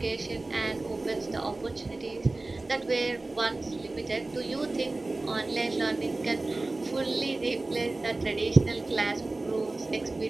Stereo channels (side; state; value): left; quieter; 3.1 dB